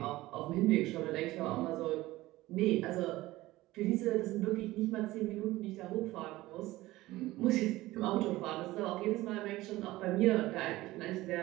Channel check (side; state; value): left; quieter; 17.8 dB